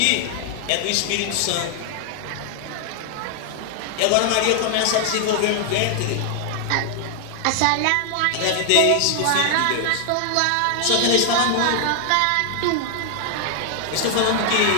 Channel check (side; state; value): both; different; correlation 0.00